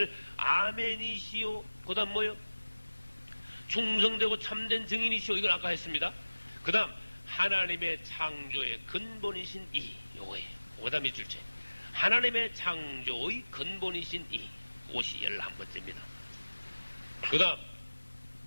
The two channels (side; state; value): both; inverted; correlation -1.00